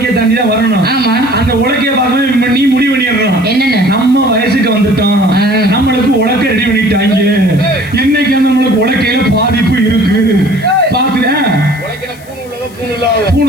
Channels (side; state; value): left; noise; hiss, 25 dB below the sound